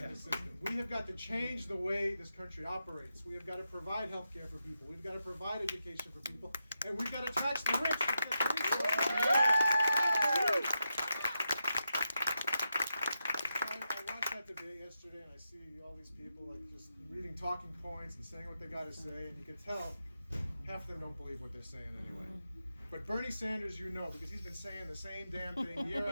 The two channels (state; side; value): inverted; both; correlation -0.87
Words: system. We have got to change the way this country operates. We have got to provide health care for people. We've got to provide education for people. And we've got to tax the rich. Debate yesterday, and I see all these people like just reading talking points and saying what they got to say, and you can tell half of them don't believe what they're saying anyway. But Bernie Sanders, you know, because he's been saying the same damn thing year